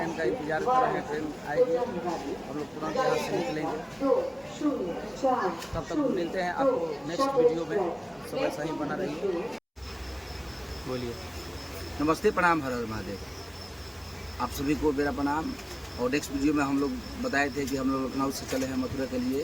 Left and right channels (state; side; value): identical; both; correlation 1.00